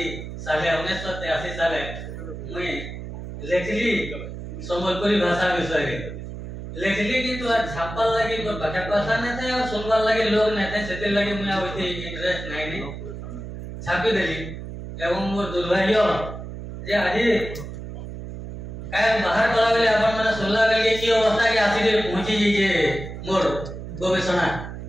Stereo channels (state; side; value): noise; right; hum, 9 dB below the sound